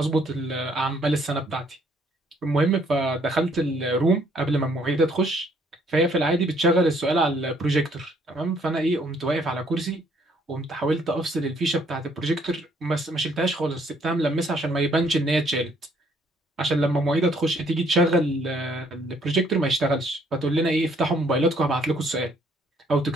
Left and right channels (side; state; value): both; normal; correlation 0.65